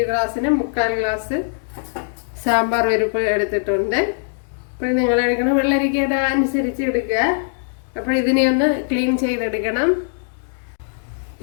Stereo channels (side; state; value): right; silent; digital silence